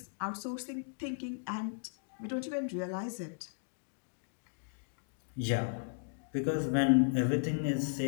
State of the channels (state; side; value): silent; right; digital silence